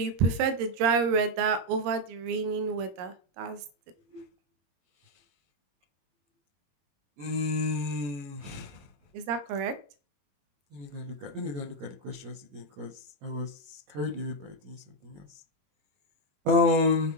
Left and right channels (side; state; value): left; late; 22 ms